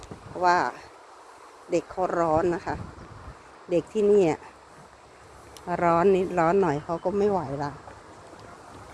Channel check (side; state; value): both; identical; correlation 1.00